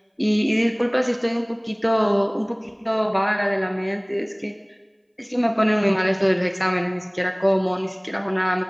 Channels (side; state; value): both; identical; correlation 1.00